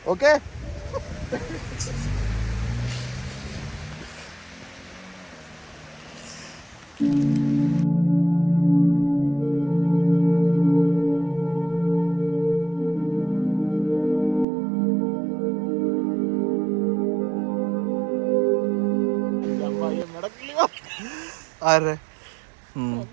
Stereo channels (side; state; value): left; drops out; at 14.5 s